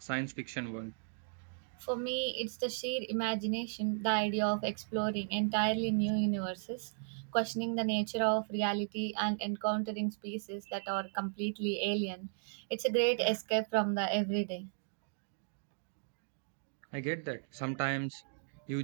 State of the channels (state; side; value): silent; left; digital silence